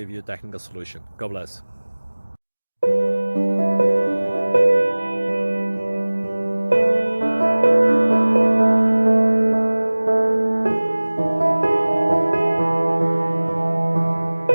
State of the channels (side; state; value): both; inverted; correlation -1.00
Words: you a technical solution. God bless.